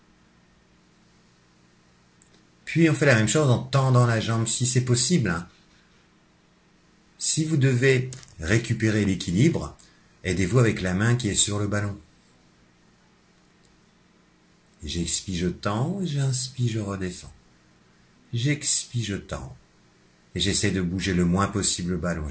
Puis on fait la même chose en tendant la jambe si c'est possible. Si vous devez récupérer l'équilibre, aidez-vous avec la main qui est sur le ballon. J'expire, je tends, j'inspire, je redescends. J'expire, je tends. Et j'essaie de bouger le moins possible le ballon.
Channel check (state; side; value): identical; both; correlation 1.00